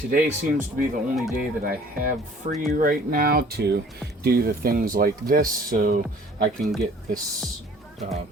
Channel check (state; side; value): normal; both; correlation 0.53